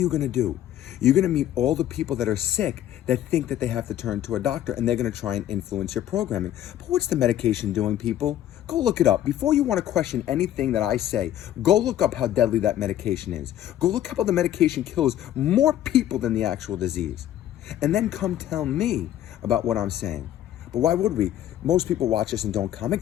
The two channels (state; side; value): quieter; right; 11.9 dB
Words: going to do? You're going to meet all the people that are sick that think that they have to turn to a doctor, and they're going to try and influence your programming. But what's the medication doing, people? Go look it up. Before you want to question anything that I say, go look up how deadly that medication is. Go look up how the medication kills more people than the actual disease. And then come tell me about what I'm saying. But why would we? Most people watch us and don't